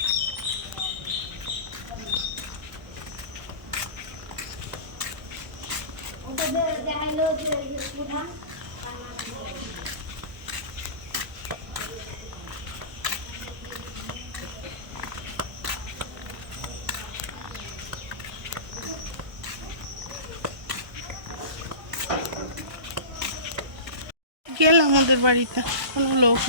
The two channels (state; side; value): late; left; 1.2 ms